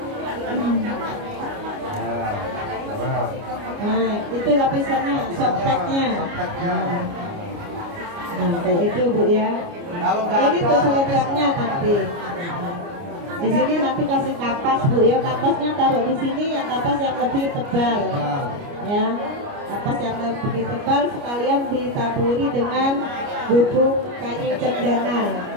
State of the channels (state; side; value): late; left; 29 ms